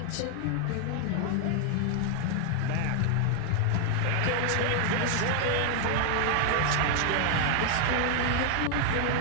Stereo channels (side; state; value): both; different; correlation 0.00